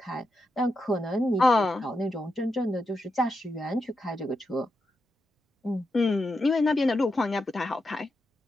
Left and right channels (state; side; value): normal; both; correlation 0.86